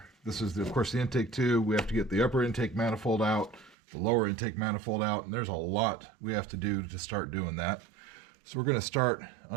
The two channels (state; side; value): drops out; left; at 3.8 s